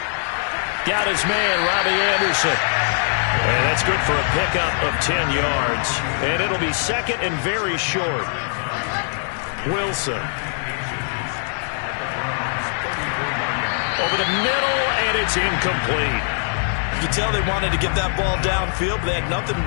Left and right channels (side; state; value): right; silent; 64 dB below the other